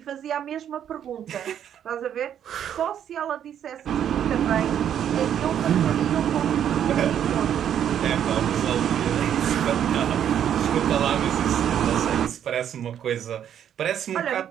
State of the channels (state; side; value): quieter; left; 9.6 dB